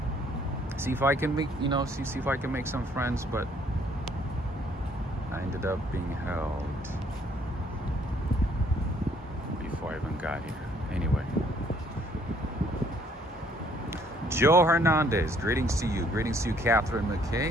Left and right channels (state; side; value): normal; both; correlation 0.63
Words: See if I can make, see if I can make some friends, but I ended up being held before I even got here. Anyway. Joe Hernandez, greetings to you. Greetings to you, Catherine